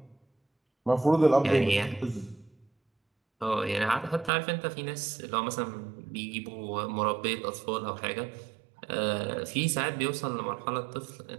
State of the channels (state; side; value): drops out; left; at 4.3 s